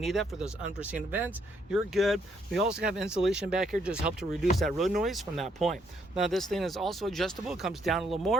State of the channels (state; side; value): normal; both; correlation 0.71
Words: that for those unforeseen events. You're good. We also have insulation back here, just help to reduce that road noise from that point. Now, this thing is also adjustable. It comes down a little